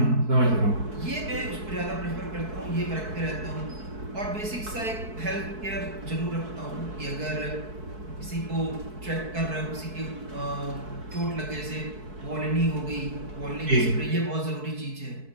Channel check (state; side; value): late; left; 4.6 ms